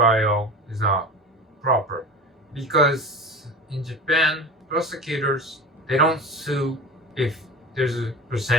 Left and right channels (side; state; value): both; normal; correlation 0.33